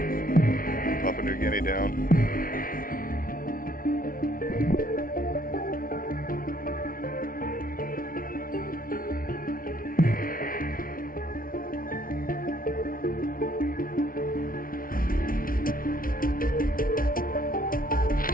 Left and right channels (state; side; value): late; right; 0.42 ms